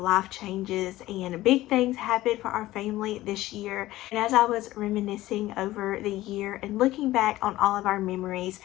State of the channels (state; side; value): quieter; right; 16.4 dB